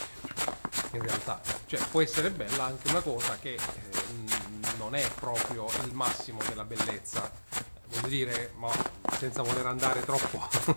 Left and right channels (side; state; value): both; inverted; correlation -1.00